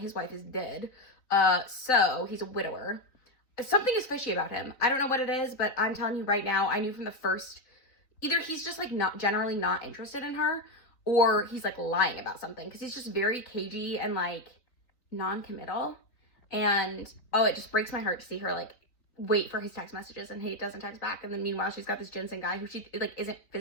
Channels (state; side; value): late; right; 3.9 ms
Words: wife is dead. So he's a widower. Something is fishy about him. I don't know what it is, but I'm telling you right now, I knew from the first, either he's just like generally not interested in her, or he's like lying about something, because he's just very cagey and like non-committal. And it just breaks my heart to see her like wait for his text messages and he doesn't text back. And then meanwhile, she's got this Jensen guy who she like isn't